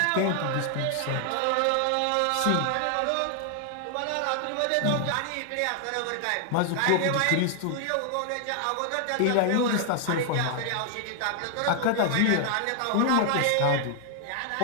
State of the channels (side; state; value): both; different; correlation 0.00